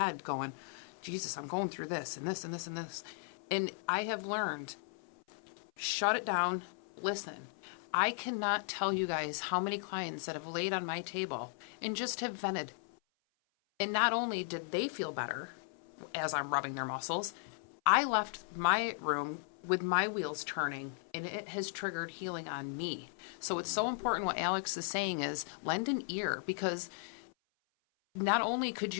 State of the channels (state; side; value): silent; right; 53 dB below the other